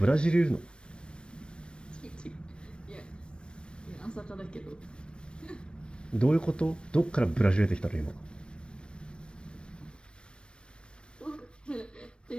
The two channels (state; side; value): late; right; 0.056 ms